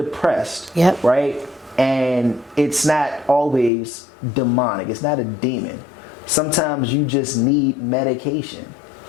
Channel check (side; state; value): right; drops out; at 3.7 s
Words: Yep. Right? And it's not always demonic. It's not a demon. Sometimes you just need medication.